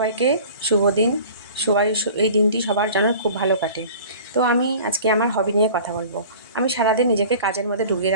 শুভ দিন। সবাই এই দিনটি সবার যেন খুব ভালো কাটে। তো আমি আজকে আমার হবি নিয়ে কথা বলবো। আমি সারাদিন নিজেকে কাজের মধ্যে ডুবিয়ে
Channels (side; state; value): both; inverted; correlation -0.43